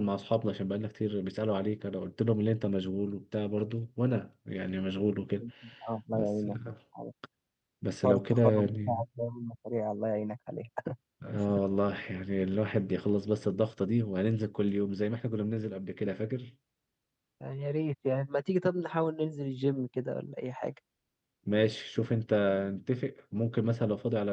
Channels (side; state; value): both; identical; correlation 1.00